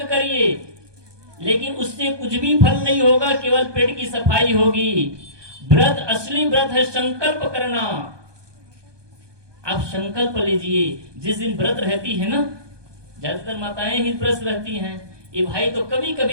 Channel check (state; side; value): late; left; 1.2 ms